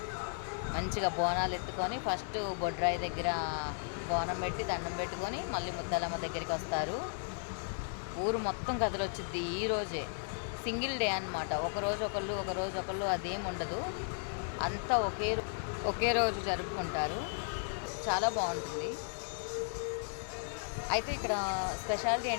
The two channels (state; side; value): silent; right; digital silence